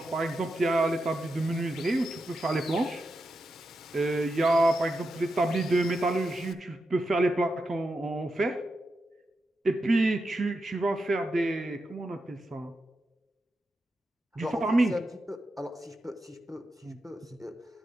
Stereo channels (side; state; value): both; normal; correlation 0.87